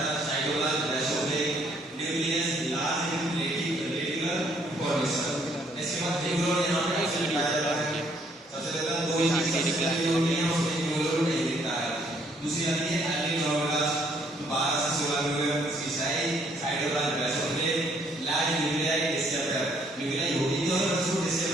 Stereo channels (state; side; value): normal; both; correlation 0.66